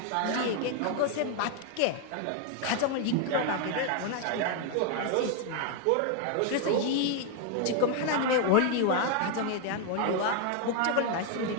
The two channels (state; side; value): different; both; correlation 0.01